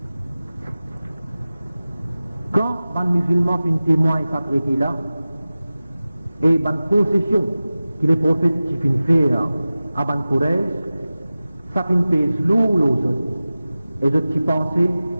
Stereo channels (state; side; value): inverted; both; correlation -0.96